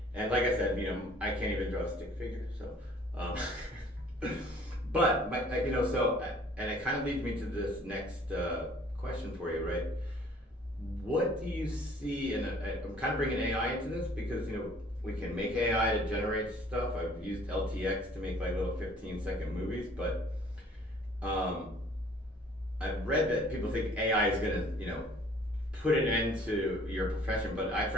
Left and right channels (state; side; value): normal; both; correlation 0.55